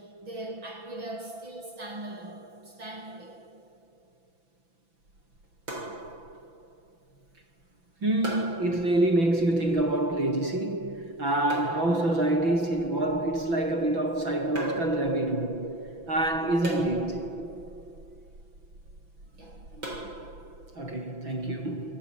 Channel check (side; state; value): left; late; 6.0 ms